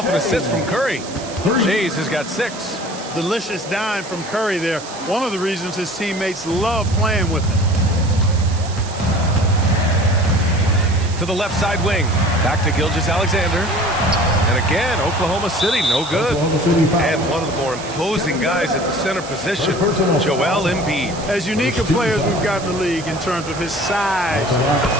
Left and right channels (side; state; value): right; noise; hiss, 14 dB below the sound